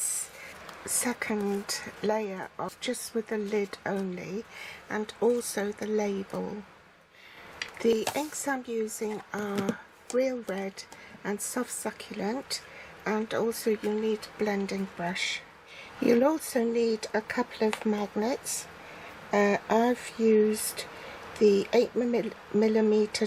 second layer off just with the lid only, and also the label. The inks I'm using are real red and soft succulent, and also you need a blending brush. You'll also need a couple of magnets. I've used the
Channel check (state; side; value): identical; both; correlation 1.00